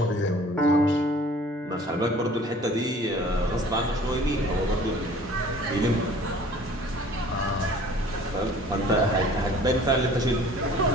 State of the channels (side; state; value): both; normal; correlation 0.50